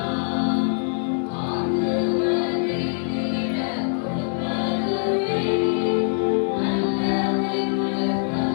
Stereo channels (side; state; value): right; silent; digital silence